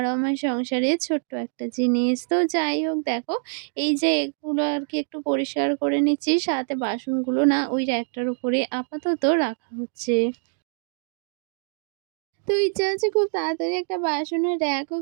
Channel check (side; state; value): left; silent; 60 dB below the other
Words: আমার সংসারের ছোট্ট একটা জিনিস। তো যাই হোক, দেখো এই যে এগুলো আর কি একটু পরিষ্কার করে নিচ্ছি, সাথে বাসনগুলো না ওই র্যাকটার উপরে আপাতত রাখা হচ্ছে। তো ইচ্ছা আছে খুব তাড়াতাড়ি একটা বাসনের র‍্যাকও